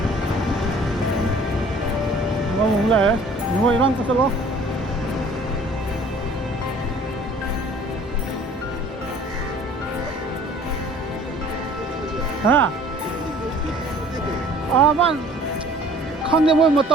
ngon lẹ ngồi răng cái lo hả à bạn không thể một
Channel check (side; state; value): both; normal; correlation 0.51